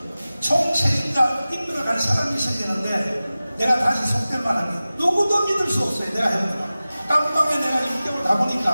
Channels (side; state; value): both; inverted; correlation -0.96